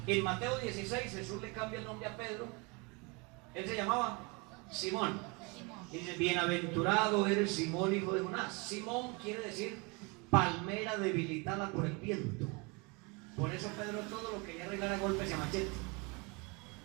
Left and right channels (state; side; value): quieter; left; 28.3 dB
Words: En Mateo 16 Jesús le cambia el nombre a Pedro. Él se llamaba Simón. Dice, bienaventurado eres Simón, hijo de Jonás. Simón quiere decir palmera debilitada por el viento. Por eso Pedro todo lo quería arreglar a golpes y a machete.